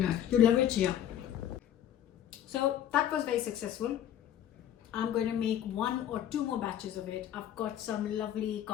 You love it, yeah. So that was very successful. I'm going to make 1 or 2 more batches of it. I've got some lovely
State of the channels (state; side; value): quieter; right; 10.8 dB